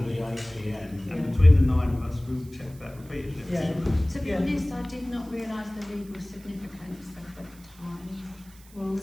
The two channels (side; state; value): right; noise; hiss, 24 dB below the sound